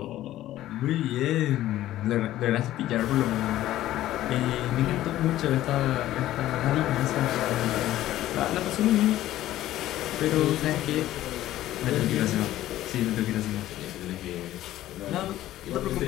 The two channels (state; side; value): quieter; right; 14.2 dB